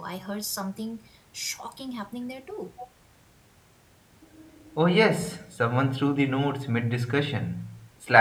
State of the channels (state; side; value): identical; both; correlation 1.00